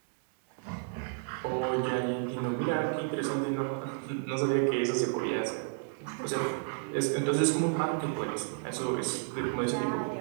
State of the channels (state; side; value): silent; left; 56 dB below the other